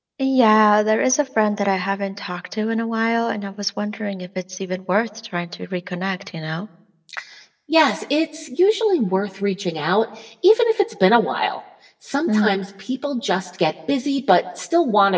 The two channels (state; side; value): identical; both; correlation 1.00